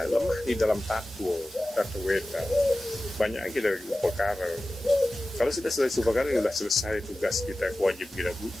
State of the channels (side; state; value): both; normal; correlation 0.95